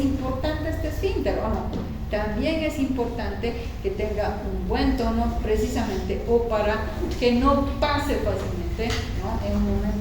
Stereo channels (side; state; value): both; identical; correlation 1.00